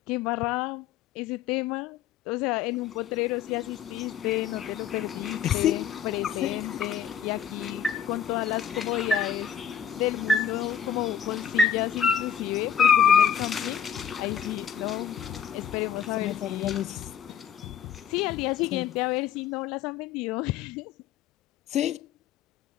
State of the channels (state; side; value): quieter; right; 8.3 dB